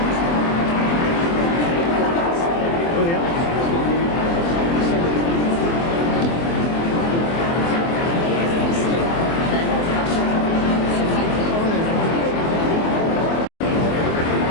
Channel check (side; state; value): right; late; 24 ms